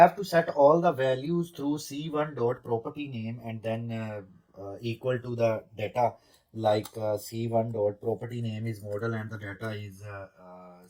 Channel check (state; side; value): identical; both; correlation 1.00